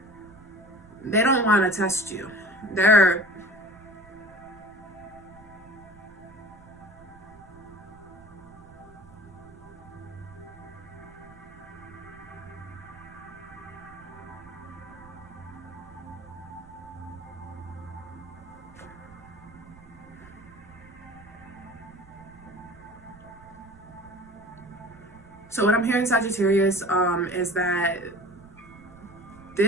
So what I'm hearing, Sagittarius, is that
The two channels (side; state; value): right; noise; rumble, 21 dB below the sound